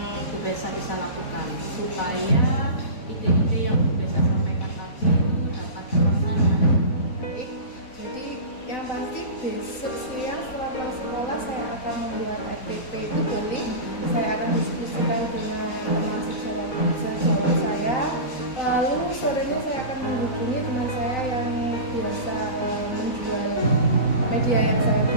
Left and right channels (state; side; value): late; right; 4.2 ms